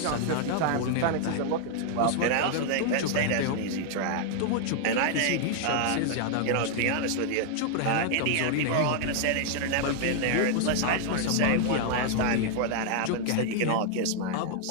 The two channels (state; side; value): different; both; correlation 0.00